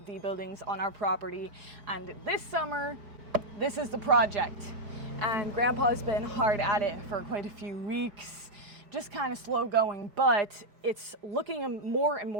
the buildings on our property, and this summer, this is the project. And Grandpa's been hard at it for quite a few weeks, just kind of slow going, but it's looking more and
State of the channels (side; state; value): left; late; 5.0 ms